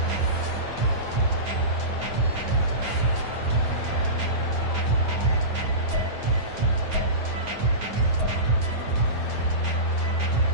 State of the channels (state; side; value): late; left; 9.4 ms